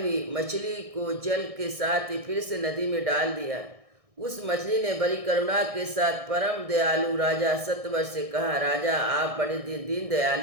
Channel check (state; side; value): late; left; 1.6 ms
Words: मछली को जल के साथ ही फिर से नदी में डाल दिया। उस मछली ने बड़ी करुणा के साथ परम दयालु राजा सत्यव्रत से कहा, राजा, आप बड़े दीन